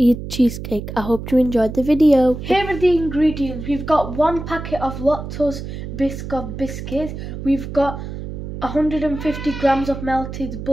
cheesecake. I hope you enjoyed the video. Here are the ingredients. We've got 1 packet of Lactose Biscoff biscuits. We've got 150 grams of melted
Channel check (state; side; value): noise; right; hum, 8 dB below the sound